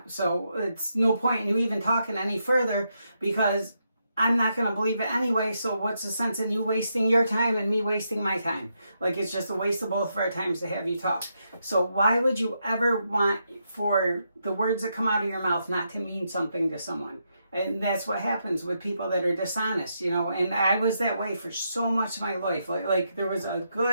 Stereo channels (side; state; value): both; inverted; correlation -0.81